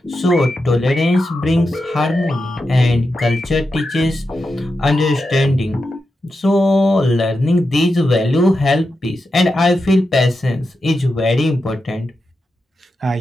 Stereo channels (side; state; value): both; normal; correlation 0.88